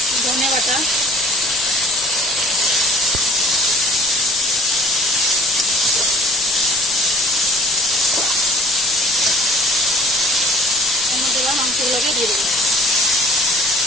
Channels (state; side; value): normal; both; correlation 0.52